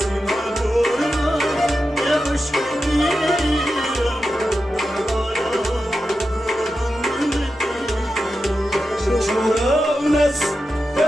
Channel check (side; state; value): both; normal; correlation 0.90